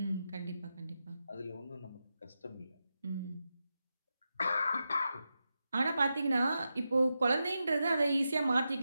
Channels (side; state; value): both; inverted; correlation -0.89